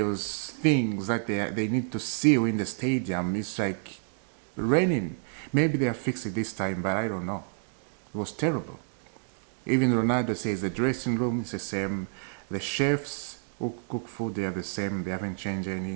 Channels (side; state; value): left; silent; 58 dB below the other